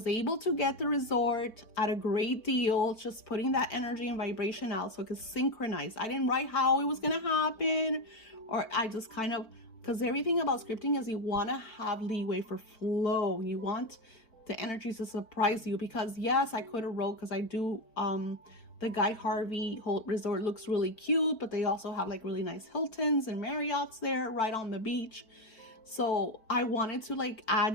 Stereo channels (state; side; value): late; right; 4.5 ms